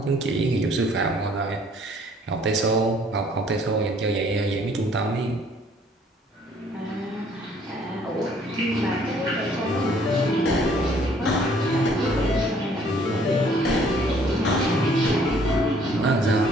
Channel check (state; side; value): normal; both; correlation 0.60